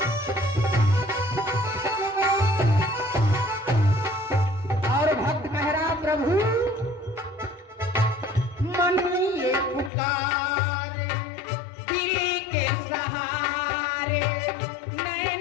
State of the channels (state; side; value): drops out; right; at 9.9 s